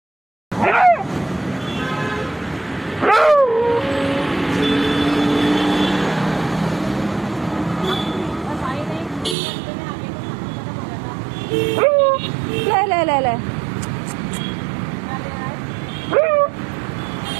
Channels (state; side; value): drops out; left; at 9.3 s